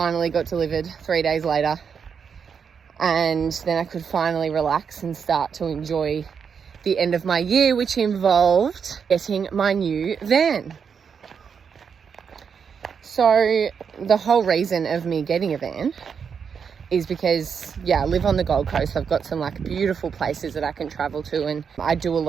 got delivered 3 days later, and then I could finally relax and start to enjoy the end of my year, which involved getting my new van. So the whole reason of me getting a van is because, yeah, I live on the Gold Coast. I've got some like beautiful places that I can travel to, and I do a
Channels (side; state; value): left; quieter; 6.6 dB